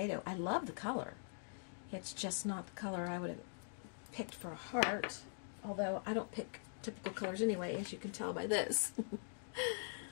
I love the color. It's just not the color I would have picked for a heart, although I don't pick typical colors anyway, as you can tell by this.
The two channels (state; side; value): silent; right; digital silence